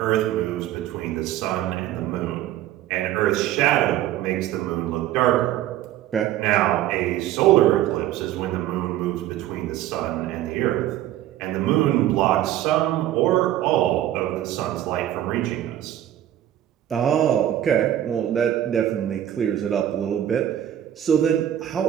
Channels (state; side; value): quieter; left; 12.4 dB